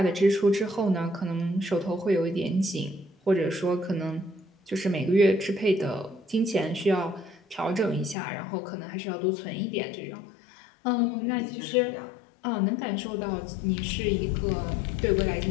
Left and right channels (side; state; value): right; drops out; at 8.2 s